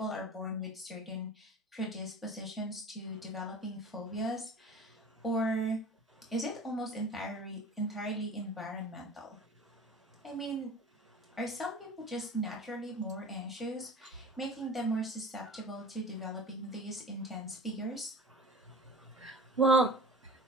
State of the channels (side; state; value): both; normal; correlation 0.39